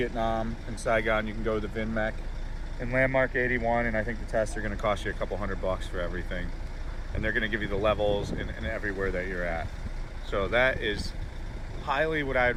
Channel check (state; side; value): identical; both; correlation 1.00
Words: in Saigon, you can go to the VinMec in Landmark 81, and I think the tests are going to cost you a couple $100 for everything. And they're going to give you the levels and everywhere that you're at. So that is highly what I'd